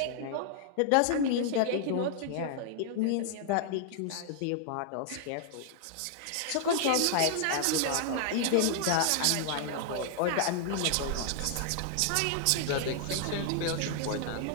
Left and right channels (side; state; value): both; different; correlation -0.01